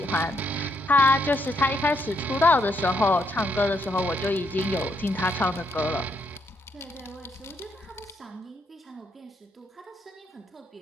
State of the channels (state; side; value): normal; both; correlation 0.76